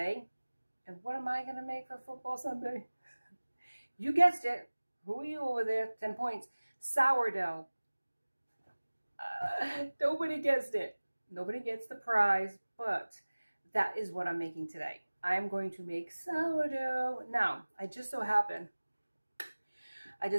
and what am I going to make for Football Sunday? You guessed it. Who are you over there? 10 points. Sourdough. Nobody guessed it. Nobody gets the prize, but that is what I'm making today. I'm going to make sourdough. Now, I just so happen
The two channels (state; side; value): inverted; both; correlation -1.00